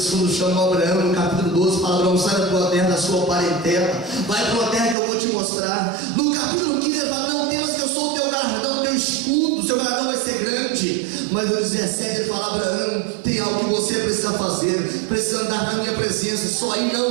quando chamou Abraão no capítulo 12, fala: Abraão, sai da tua terra, da sua parentela, vai para uma terra que eu vou te mostrar. No capítulo 15 ele fala: não temas que eu sou o teu galardão, o teu escudo, o seu galardão vai ser grande. Mas no 17 ele fala: Abraão, tem algo que você precisa fazer, precisa andar na minha presença. Só aí não,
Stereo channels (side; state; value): left; drops out; at 5.0 s